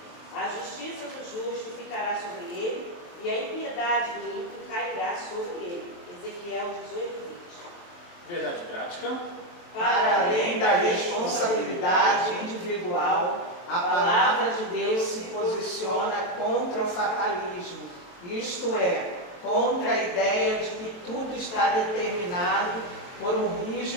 A justiça do justo ficará sobre ele, e a impiedade do ímpio cairá sobre ele. Ezequiel 18:20. Verdade prática. Para além da responsabilidade individual, a palavra de Deus se posiciona contra o fatalismo, isto é, contra a ideia de que tudo está determinado por um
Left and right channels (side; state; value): right; late; 23 ms